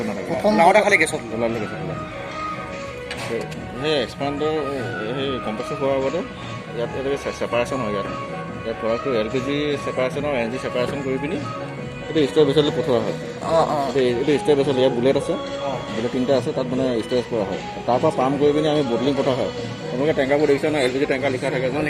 নাথাকে প্ৰথম নাওটা খালি গেছত ওলালে গেছত ওলায় সেই এক্সপাণ্ডাৰ সেই কম্প্ৰেছৰ হোৱাৰ আগতে ইয়াত এনেকৈ ছেপাৰেশ্যন হয় ইয়াত প্ৰডাক্টটো LPG ছেপাৰেশ্যন আৰু NG ছেপাৰেশ্যন কৰি পিনি এইটো ষ্ট'ৰ বেচলৈ পঠোৱা হয় এইটো ষ্ট'ৰ বেচল ইয়াত বুলেট আছে বুলেট 3টা আছে তাত মানে ষ্ট'ৰেজ কৰা হয় তাৰপৰা পাম্প কৰি পিনি আমি বটলিং পঠোৱা হয় আপোনালোকে টেংকাৰবোৰ দেখিছে ন LPG টেংকাৰ লিখা থাকে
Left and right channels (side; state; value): both; identical; correlation 1.00